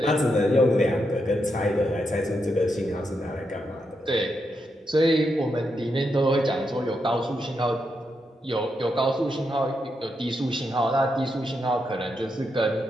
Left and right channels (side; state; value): both; normal; correlation 0.83